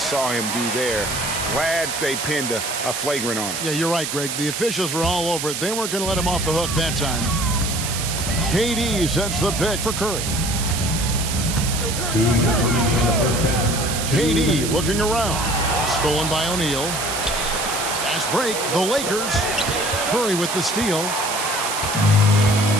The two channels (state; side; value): noise; right; hiss, 4 dB below the sound